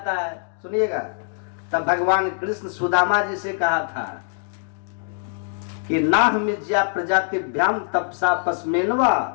है। सुनिएगा, तब भगवान कृष्ण सुदामा जी से कहा था कि नाहमिज्या प्रजातिभ्याम तपसा पस्मेनवा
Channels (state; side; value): silent; right; digital silence